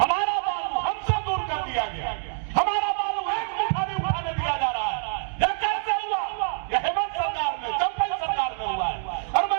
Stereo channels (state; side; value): silent; left; 61 dB below the other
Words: बालू हमसे दूर कर दिया गया। हमारा बालू एक मुठ्ठा भी उठाने दिया जा रहा है। यह कैसे हुआ? यह हेमंत सरकार में, चंपई सरकार में हुआ है। और